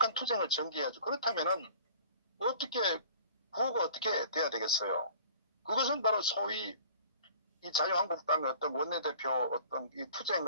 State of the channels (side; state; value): both; inverted; correlation -0.48